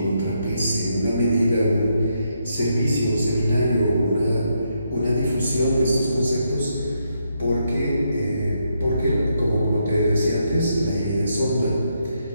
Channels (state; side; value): inverted; both; correlation -0.79